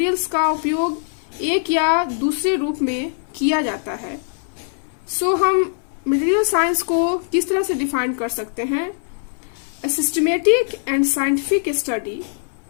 का उपयोग एक या दूसरे रूप में किया जाता है। हम मटेरियल साइंस को किस तरह से डिफाइन कर सकते हैं? A systematic and scientific study,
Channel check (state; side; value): silent; right; 61 dB below the other